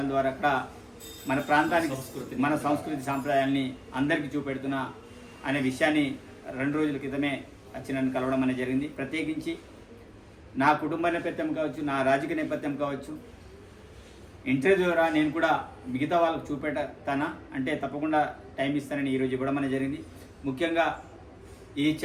ద్వారా అక్కడ మన ప్రాంతానికి, మన సంస్కృతి సాంప్రదాయాల్ని అందరికీ చూపెడుతున్నా అనే విషయాన్ని 2 రోజుల క్రితమే వచ్చి నన్ను కలవడం అనేది జరిగింది. ప్రత్యేకించి నా కుటుంబ నేపథ్యం కావచ్చు, నా రాజకీయ నేపథ్యం కావచ్చు, ఇంటర్వ్యూ ద్వారా నేను కూడా మిగతా వాళ్ళకు చూపెడతానా అంటే తప్పకుండా టైం ఇస్తానని ఈరోజు ఇవ్వడం అనేది జరిగింది. ముఖ్యంగా ఈ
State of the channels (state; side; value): identical; both; correlation 1.00